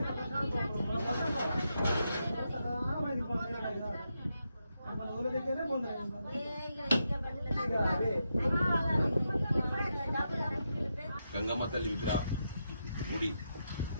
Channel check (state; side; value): inverted; both; correlation -0.85